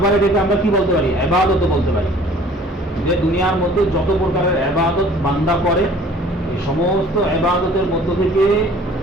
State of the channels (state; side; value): normal; both; correlation 0.52